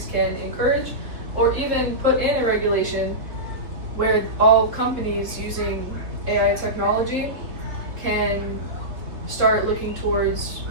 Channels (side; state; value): left; late; 3.5 ms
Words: can encourage or even put in a regulation where all companies using AI technology can start looking towards